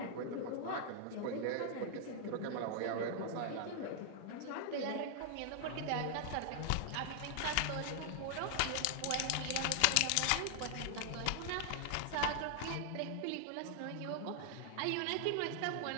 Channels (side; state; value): both; different; correlation 0.00